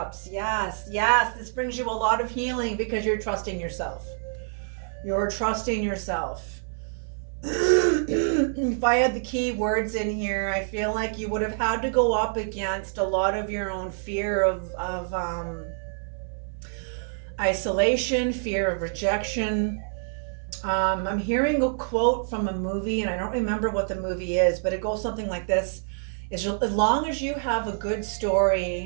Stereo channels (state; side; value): silent; left; 58 dB below the other